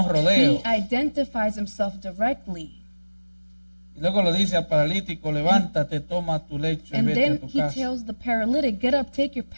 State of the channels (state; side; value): inverted; both; correlation -1.00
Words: rodeos. he identifies himself directly. Y luego le dice al paralítico, levántate, toma tu lecho y And vete a then tu he casa. tells the paralytic, get up, take your